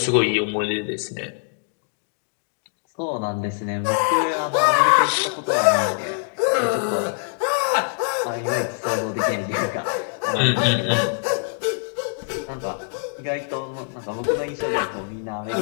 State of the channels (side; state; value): right; silent; 55 dB below the other